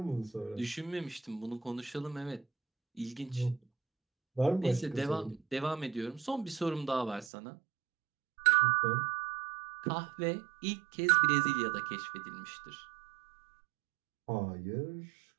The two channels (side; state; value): left; drops out; at 7.3 s